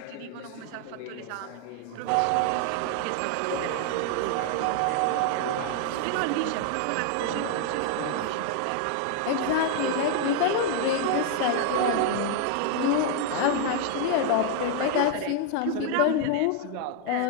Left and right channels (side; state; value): both; different; correlation 0.00